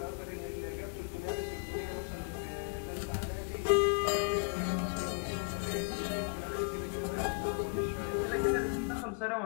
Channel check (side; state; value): right; quieter; 39.8 dB